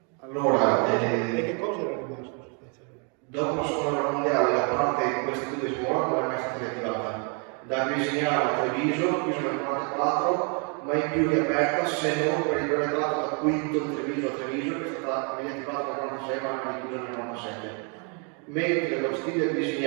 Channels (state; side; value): quieter; left; 37.2 dB